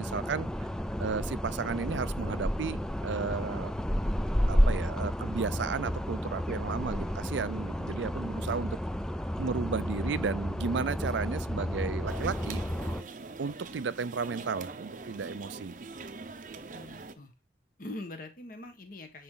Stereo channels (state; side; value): normal; both; correlation 0.62